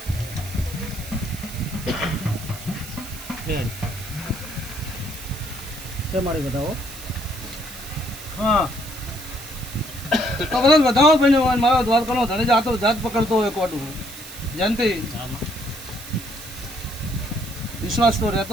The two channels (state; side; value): noise; right; hiss, 13 dB below the sound